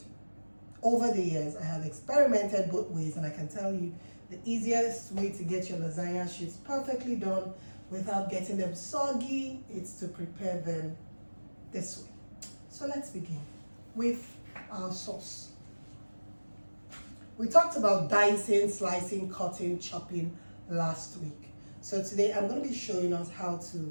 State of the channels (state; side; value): inverted; both; correlation -1.00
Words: over the years, I have experimented both ways, and I can tell you the easiest way to get your lasagna sheets perfectly done without getting them soggy is to prepare them this way. So let's begin with our sauce. We talked about dicing, slicing, cutting, chopping last week. So today I'm going to be showing us how